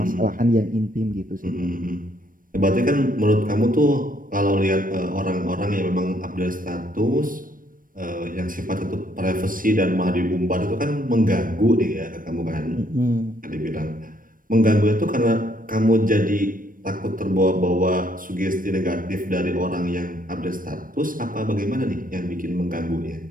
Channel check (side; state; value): left; late; 0.40 ms